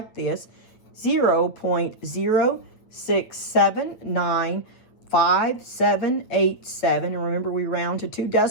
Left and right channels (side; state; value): right; late; 8.9 ms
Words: this, 0.06795787. And remember, we round to 2